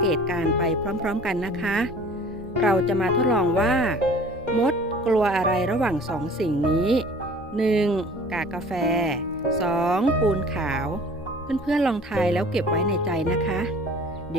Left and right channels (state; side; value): normal; both; correlation 0.47